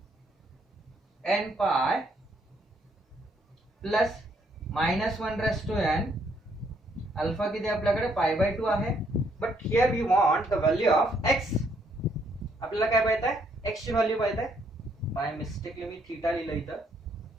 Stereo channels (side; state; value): both; normal; correlation 0.70